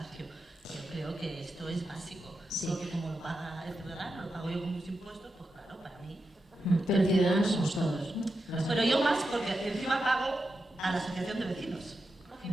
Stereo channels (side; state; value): both; normal; correlation 0.88